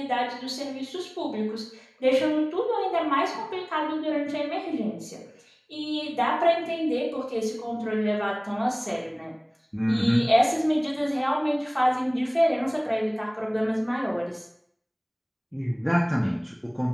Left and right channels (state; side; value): identical; both; correlation 1.00